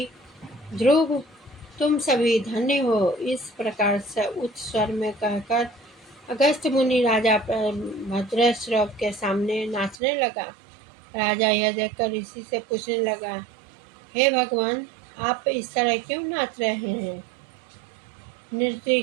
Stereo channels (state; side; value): drops out; left; at 10.0 s